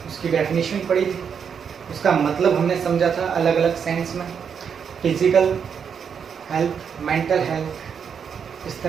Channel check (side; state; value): left; quieter; 7.0 dB